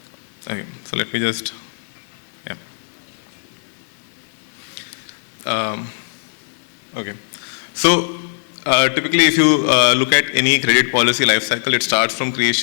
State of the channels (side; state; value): right; silent; digital silence